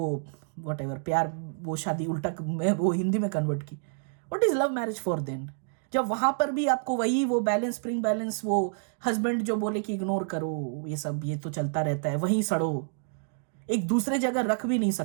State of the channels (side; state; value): left; silent; digital silence